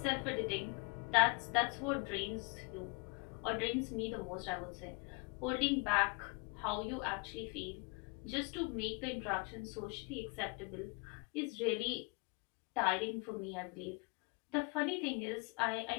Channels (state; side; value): quieter; right; 32.3 dB